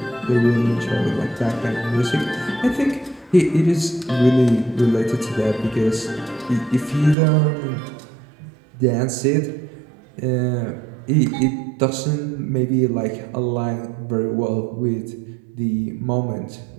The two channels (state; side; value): drops out; left; at 7.2 s